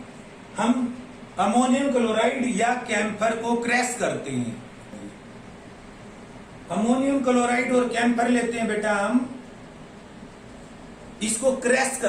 हम अमोनियम क्लोराइड या कैम्फर को क्रैश करते हैं, अमोनियम क्लोराइड और कैम्फर लेते हैं बेटा, हम इसको क्रैश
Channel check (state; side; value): identical; both; correlation 1.00